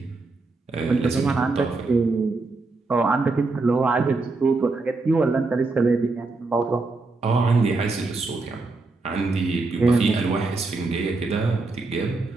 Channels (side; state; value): left; quieter; 3.6 dB